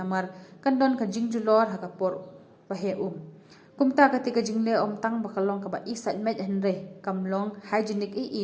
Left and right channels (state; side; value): identical; both; correlation 1.00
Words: kandon ka jingjulor hakapor pahe kumta ketika jingle tang bakalong ka ba isat met henre kamlong hygienic